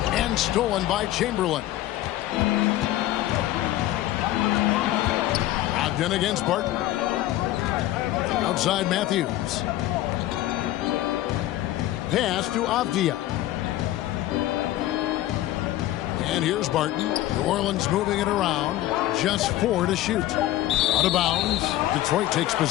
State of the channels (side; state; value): right; quieter; 14.7 dB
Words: And stolen by Chamberlain. Brogdon against Barton. Outside Matthews. Pass to Avdia. And here's Barton. New Orleans moving it around. Just 4 to shoot. Out of bounds. Detroit takes